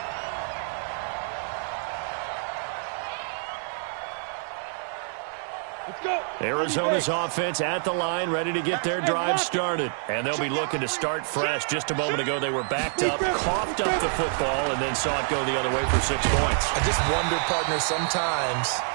Arizona's offense at the line, ready to get their drive started. And they'll be looking to start fresh. Just a moment ago, they were backed up, coughed up the football, and then saw it go the other way for 6 points. I just wonder, partner, sometimes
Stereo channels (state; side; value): silent; left; 60 dB below the other